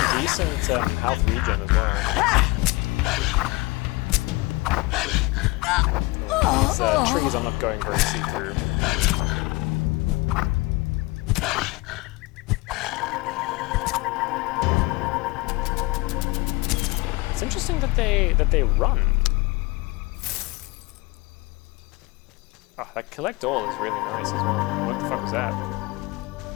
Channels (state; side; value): quieter; right; 23.1 dB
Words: decent health regen as well. These trees I'm not going very see-through. It's interesting that they run. Oh, that collect all is really nice as well. What the fuck was that?